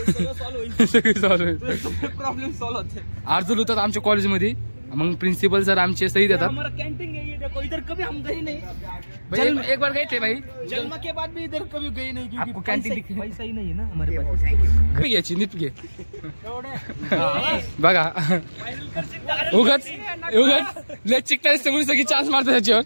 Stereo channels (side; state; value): both; inverted; correlation -1.00